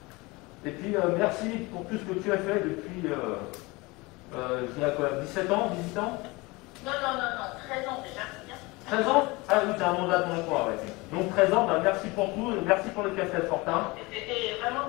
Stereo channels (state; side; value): quieter; right; 23.9 dB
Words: Et puis merci pour tout ce que tu as fait depuis, je dirais quoi, 17 ans, 18 ans? Non, 13 ans déjà. Bien. 13 ans? Ah oui, t'as un mandat de mon emploi, ouais. Donc 13 ans, bah, merci pour tout, et merci pour le café Fortin. C'était vraiment